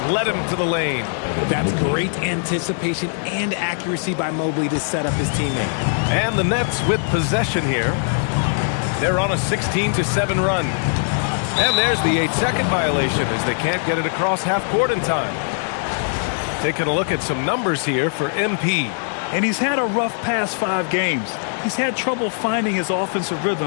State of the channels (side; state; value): right; silent; digital silence